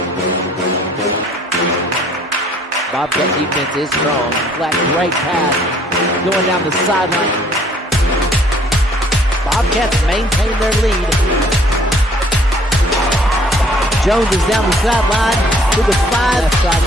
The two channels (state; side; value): normal; both; correlation 0.59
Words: Bobcat defense is strong. Flat right pass going down the sideline. Bobcats maintain their lead. Jones is down the sideline to the 5. Left side